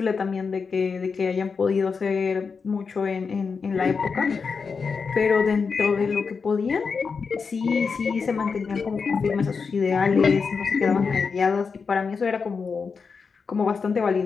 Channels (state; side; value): quieter; right; 5.3 dB